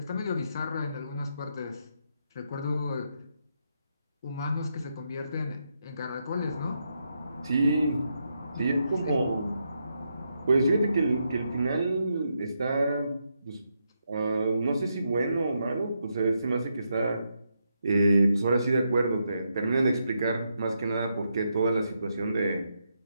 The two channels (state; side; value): inverted; both; correlation -0.82